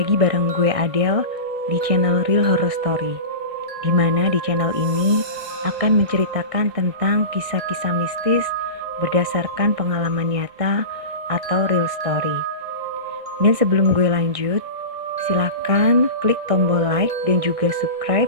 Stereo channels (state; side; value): late; left; 1.6 ms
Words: bareng gue Adele di channel Real Horror Story. Dimana di channel ini akan menceritakan tentang kisah-kisah mistis berdasarkan pengalaman nyata atau real story. Dan sebelum gue lanjut, silakan klik tombol like dan juga